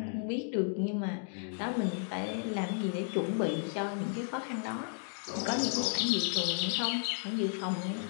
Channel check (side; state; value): right; silent; 55 dB below the other